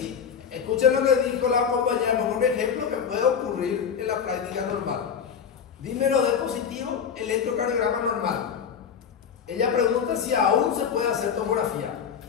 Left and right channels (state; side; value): quieter; right; 7.2 dB